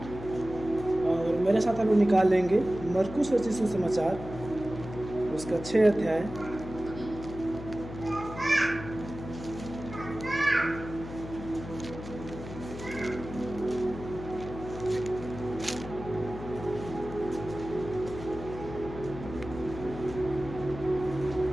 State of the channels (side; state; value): left; noise; hum, 11 dB below the sound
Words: और मेरे साथ हम लोग निकाल लेंगे मरकुस रचित सुसमाचार, उसका 6 अध्याय।